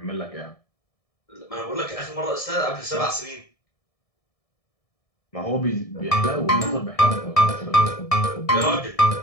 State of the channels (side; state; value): right; late; 1.7 ms